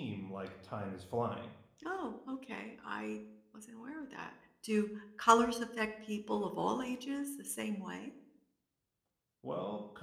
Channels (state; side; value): identical; both; correlation 1.00